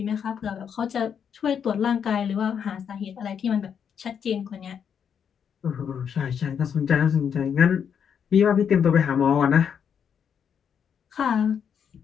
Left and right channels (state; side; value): quieter; right; 7.6 dB